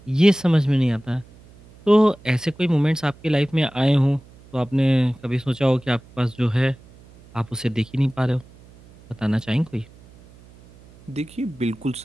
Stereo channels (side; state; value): right; noise; hum, 24 dB below the sound